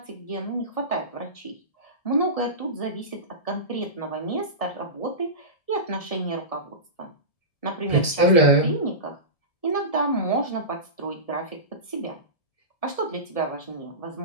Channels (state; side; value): late; right; 1.7 ms